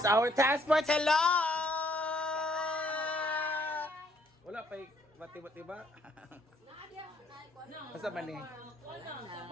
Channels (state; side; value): normal; both; correlation 0.66